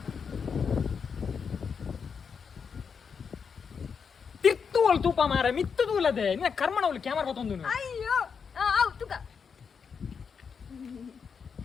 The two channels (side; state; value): right; quieter; 6.2 dB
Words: ತಿರ್ತುವಲ್ ತೂಪ ಮಾರ ಮಿತ್ತು ತೂಲದೆ ನಿನ್ನ ಕರ್ಮನ ಅವಳು ಕ್ಯಾಮರಾ ಗೊತ್ತೊಂದು ಅಯ್ಯೋ ಆವ್ ತುಕ